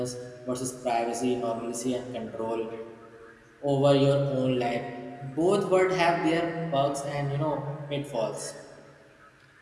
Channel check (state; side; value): identical; both; correlation 1.00